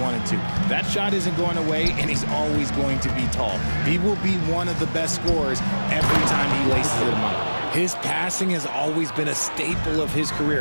to. That shot isn't going away, and he's always going to be tall. He will be one of the best scorers every time he laces them up. His passing has always been a staple of his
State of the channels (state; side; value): inverted; both; correlation -1.00